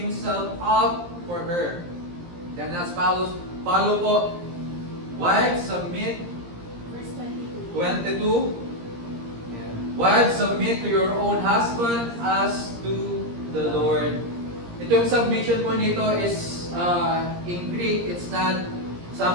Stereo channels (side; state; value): left; late; 17 ms